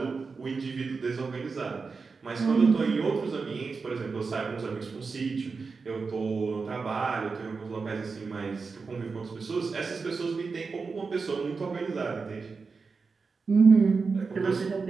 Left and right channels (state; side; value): quieter; left; 4.7 dB